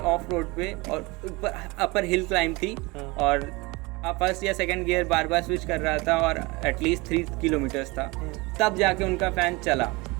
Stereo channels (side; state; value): left; quieter; 24.7 dB